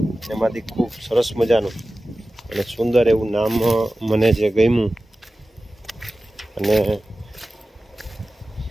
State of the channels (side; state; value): both; normal; correlation 0.95